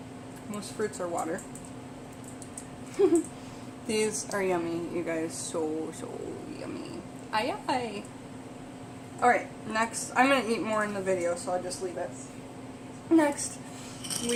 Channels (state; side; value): identical; both; correlation 1.00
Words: Most fruits are water. These are yummy, you guys. So yummy. Aye aye. Alright, next. I'm going to eat more in the video, so I'll just leave it. Next,